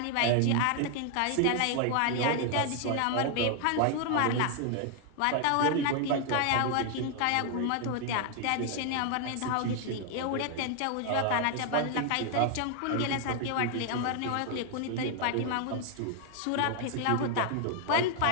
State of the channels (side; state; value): both; different; correlation 0.00